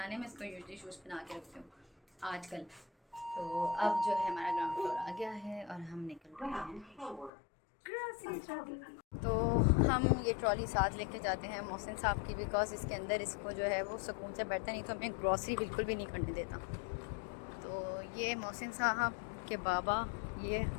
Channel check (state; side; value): drops out; right; at 7.3 s